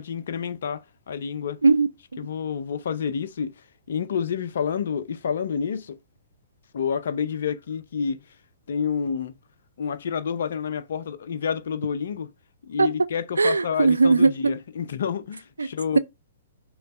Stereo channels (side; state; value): both; inverted; correlation -0.80